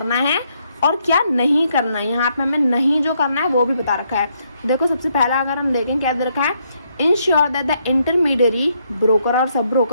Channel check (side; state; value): both; inverted; correlation -0.74